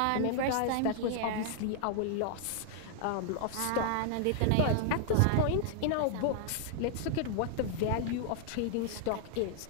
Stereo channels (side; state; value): both; different; correlation -0.01